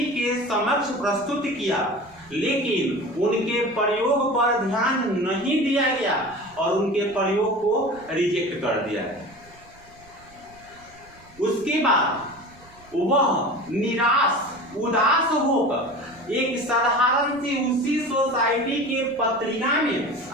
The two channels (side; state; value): right; noise; rumble, 25 dB below the sound